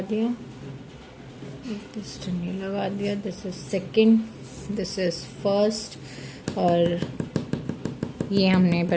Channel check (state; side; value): identical; both; correlation 1.00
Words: दिया, एक पिस्टन ये लगा दिया, this is second, this is first, और ये हमने